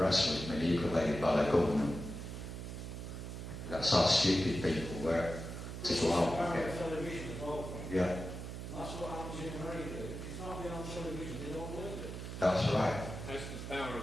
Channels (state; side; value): noise; right; hum, 8 dB below the sound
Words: was manipulated by the government. That's how stupid people were to go out and get. Yeah. That's what happens in America. If it's not been on television, they don't believe it. That's right. That's the power